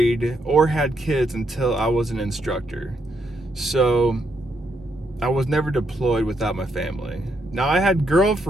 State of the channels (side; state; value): both; normal; correlation 0.77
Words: or had kids until I was an instructor. So I was never deployed without my family. Now, I had